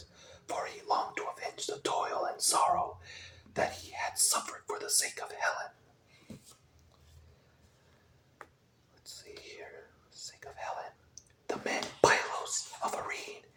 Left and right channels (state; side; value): identical; both; correlation 1.00